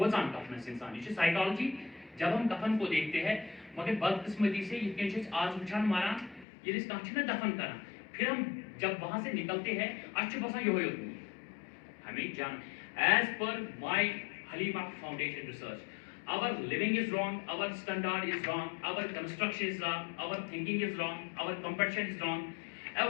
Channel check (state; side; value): drops out; right; at 6.5 s